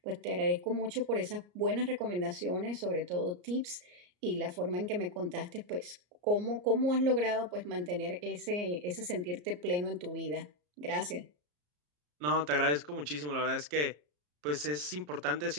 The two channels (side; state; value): left; late; 34 ms